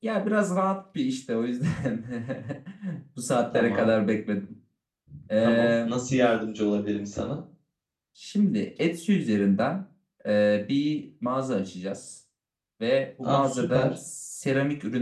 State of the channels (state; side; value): identical; both; correlation 1.00